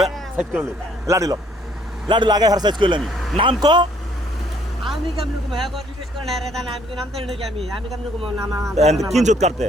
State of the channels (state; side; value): normal; both; correlation 0.64